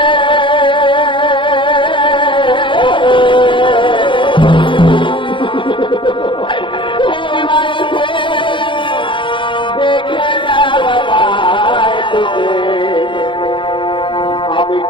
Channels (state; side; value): late; right; 0.24 ms